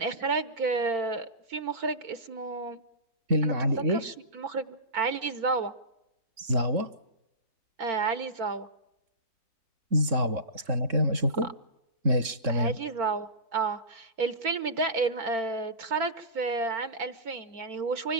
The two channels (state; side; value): late; left; 3.7 ms